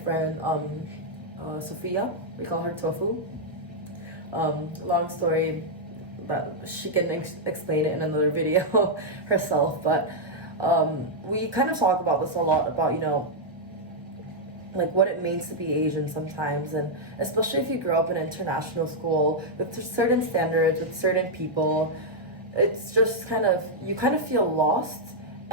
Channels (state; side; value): normal; both; correlation -0.04